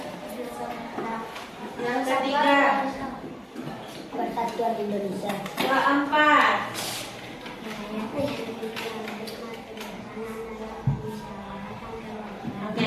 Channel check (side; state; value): both; identical; correlation 1.00